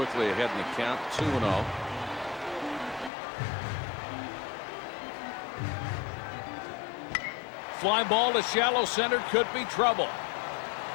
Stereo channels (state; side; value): drops out; right; at 3.1 s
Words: ahead in the count, 2-0. Fly ball to shallow center, could be trouble.